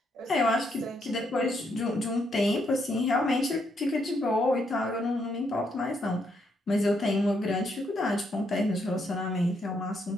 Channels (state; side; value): normal; both; correlation 0.76